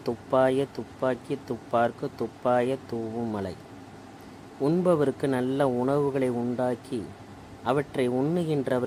துப்பாய துப்பாக்கி துப்பார்க்கு துப்பாய தூவும் மலை. உண்பவருக்கு நல்ல உணவுகளை உண்டாக்கி அவற்றை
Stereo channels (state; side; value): identical; both; correlation 1.00